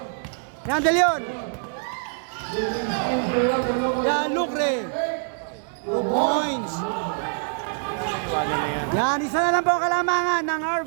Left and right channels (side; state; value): left; silent; digital silence